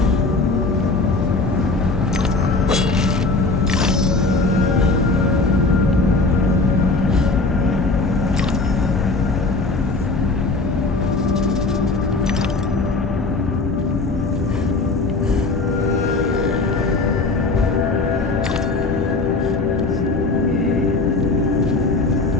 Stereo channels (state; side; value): quieter; right; 3.5 dB